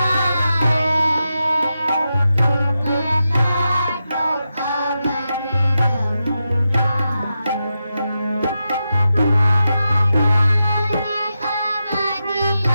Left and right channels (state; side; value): inverted; both; correlation -0.89